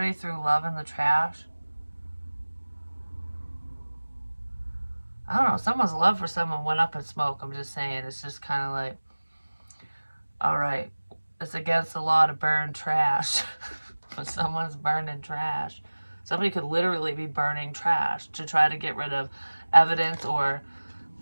threw love in the trash. I don't know. Someone's love for someone went up in smoke. I'm just saying. It's just kind of like, all right, it's against the law to burn trash. But someone's burning trash. Somebody could literally be burning trash to try to get rid of evidence, or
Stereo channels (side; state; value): both; inverted; correlation -1.00